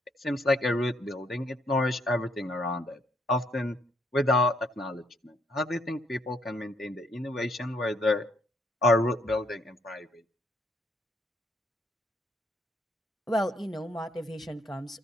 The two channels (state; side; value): normal; both; correlation 0.70